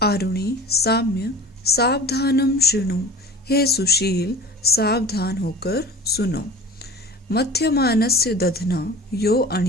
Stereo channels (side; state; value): both; normal; correlation 0.39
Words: आरुणि साम्य सावधानम शृणु, हे सुशील सावधान होकर सुनो। मध्यमानस्य दधना यो